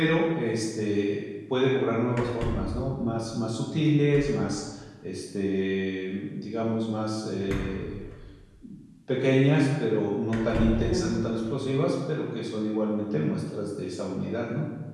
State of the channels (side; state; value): both; identical; correlation 1.00